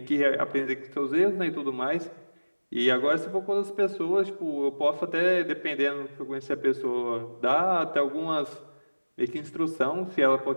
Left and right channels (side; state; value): both; inverted; correlation -1.00